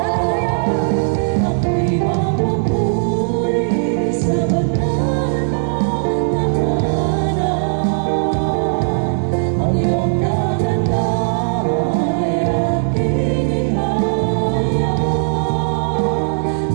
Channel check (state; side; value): silent; left; 63 dB below the other